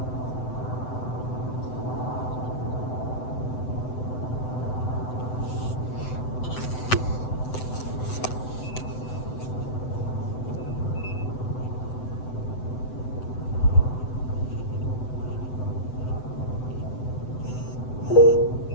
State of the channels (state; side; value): late; right; 7.9 ms